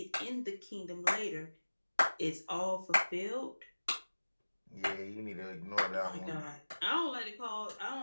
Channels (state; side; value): inverted; both; correlation -1.00